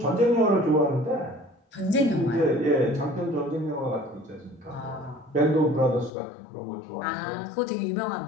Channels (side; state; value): right; drops out; at 6.1 s